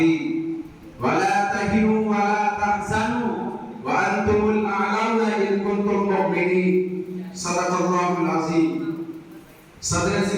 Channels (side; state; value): both; identical; correlation 1.00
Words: ولا تهنوا ولا تحزنوا وأنتم الأعلون إن كنتم مؤمنين صدق الله العظيم صدر